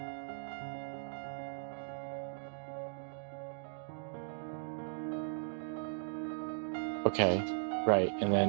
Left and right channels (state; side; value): silent; left; digital silence